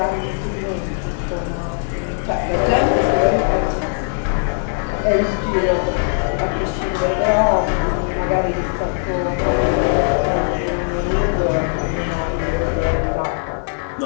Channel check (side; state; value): right; silent; 63 dB below the other